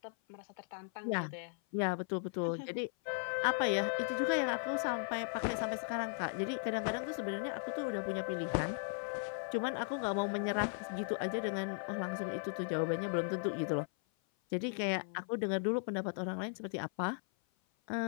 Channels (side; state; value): right; silent; 53 dB below the other